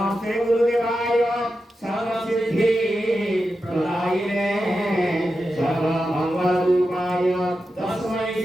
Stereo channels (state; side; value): normal; both; correlation 0.90